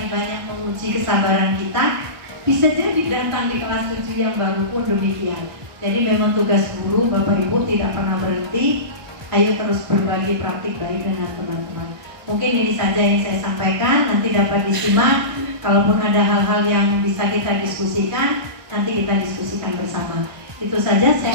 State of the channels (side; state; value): left; late; 1.2 ms